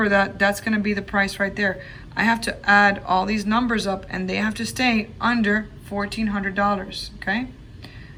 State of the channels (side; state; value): both; identical; correlation 1.00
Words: that that's gonna be the price right there. I have to add all these numbers up and they have to stay under $1,400, okay?